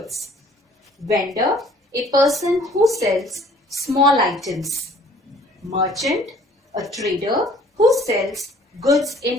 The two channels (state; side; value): normal; both; correlation 0.55